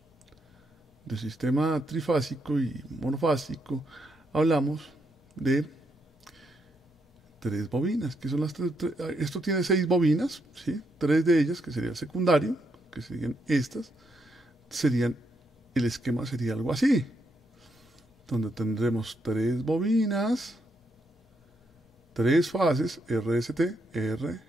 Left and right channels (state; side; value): normal; both; correlation 0.78